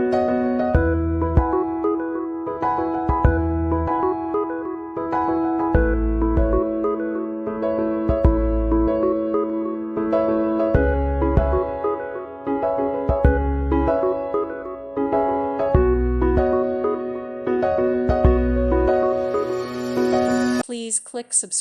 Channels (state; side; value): identical; both; correlation 1.00